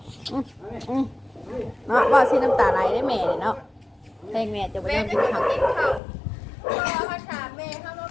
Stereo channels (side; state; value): right; drops out; at 6.0 s